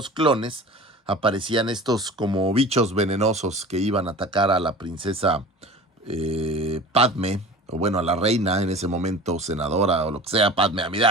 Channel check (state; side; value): normal; both; correlation 0.38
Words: clones aparecían estos como bichos venenosos que iban a atacar a la princesa Padme, o bueno, a la reina en ese momento, senadora o lo que sea, Padme